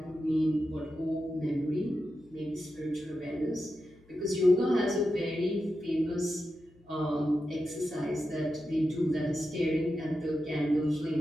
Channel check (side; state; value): left; noise; hum, 29 dB below the sound